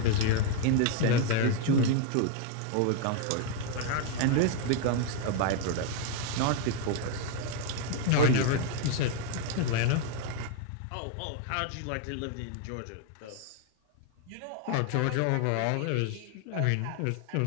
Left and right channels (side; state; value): both; different; correlation 0.00